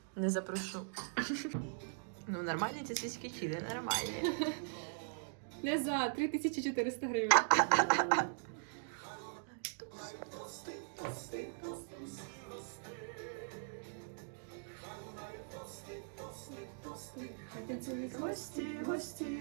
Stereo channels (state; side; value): silent; left; digital silence